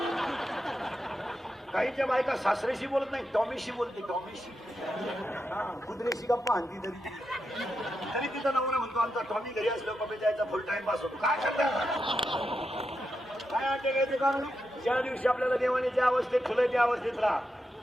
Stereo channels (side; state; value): both; normal; correlation 0.86